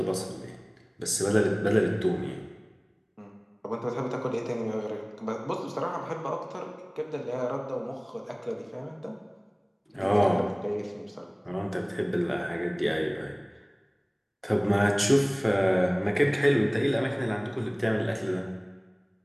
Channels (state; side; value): identical; both; correlation 1.00